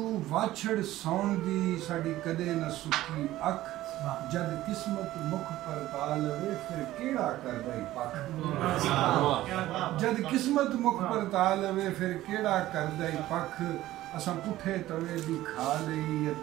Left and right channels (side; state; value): left; quieter; 15.3 dB